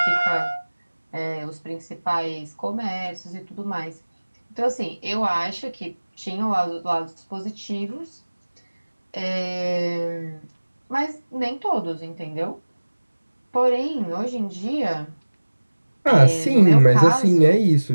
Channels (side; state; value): both; inverted; correlation -1.00